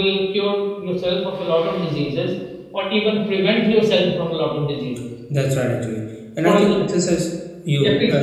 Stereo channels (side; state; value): both; identical; correlation 1.00